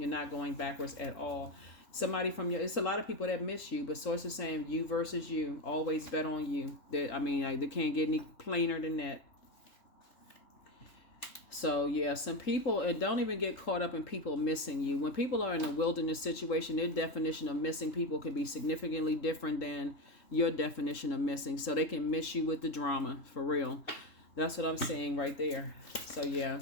not going backwards at all. Somebody it's a lot of people that miss you, but sources saying you versus you, always bet on you. They can't get any plainer than that. So yeah, some people, and don't even get caught up in people missing you. When people are in a wilderness situation, their definition of missing people can be significantly different than your definition of missing. So they can miss you with the drama, for real. That's what I'm saying right there. So yeah,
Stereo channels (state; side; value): late; right; 3.7 ms